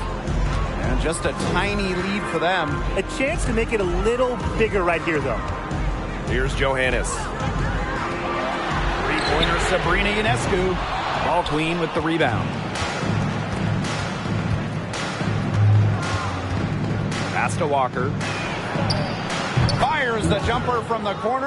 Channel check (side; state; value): both; identical; correlation 1.00